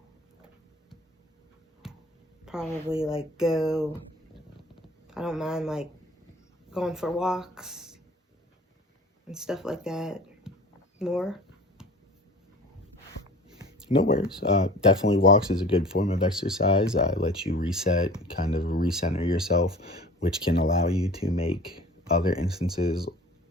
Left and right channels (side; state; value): both; normal; correlation 0.43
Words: Probably like I don't mind like going for walks and stuff like that more. No worries. Definitely walks is a good form of exercise. Lets you reset, kind of recenter yourself, which can allow you to make other instances